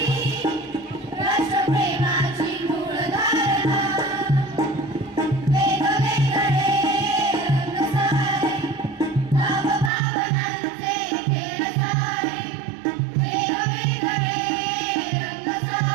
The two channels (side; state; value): left; drops out; at 9.9 s